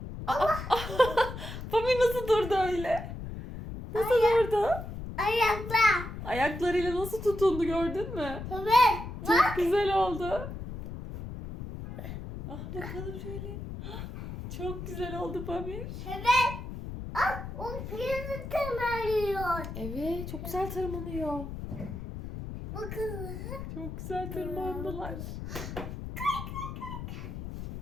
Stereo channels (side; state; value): left; noise; rumble, 8 dB below the sound